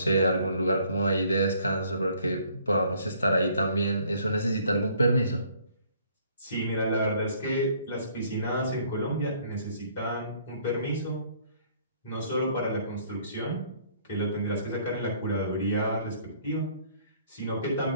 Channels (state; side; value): inverted; both; correlation -0.61